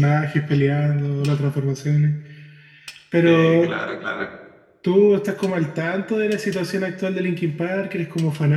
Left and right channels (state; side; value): identical; both; correlation 1.00